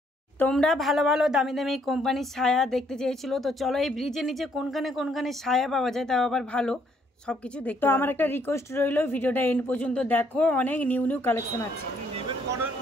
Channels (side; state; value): both; normal; correlation 0.68